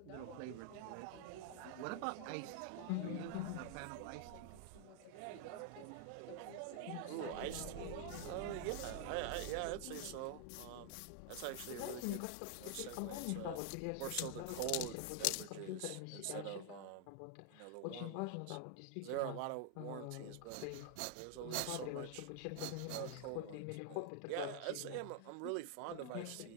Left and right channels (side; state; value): both; different; correlation 0.00